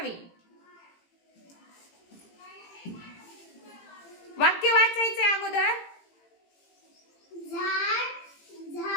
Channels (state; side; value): late; right; 18 ms